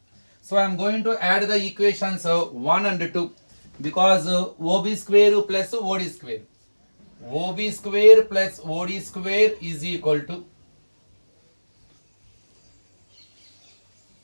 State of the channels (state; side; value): inverted; both; correlation -1.00